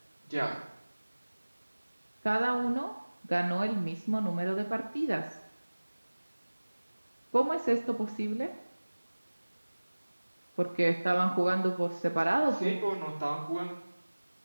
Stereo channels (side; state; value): both; inverted; correlation -1.00